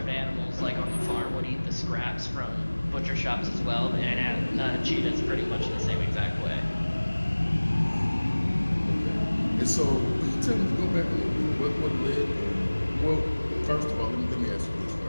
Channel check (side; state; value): both; inverted; correlation -1.00